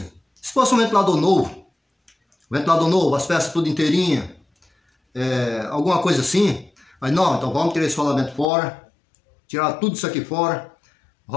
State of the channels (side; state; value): right; drops out; at 8.5 s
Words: Se fosse um ventilador novo, as peças tudo inteirinha, alguma coisa assim, mas não, então vamos tirar esse rolamento fora, tirar tudo isso aqui fora. O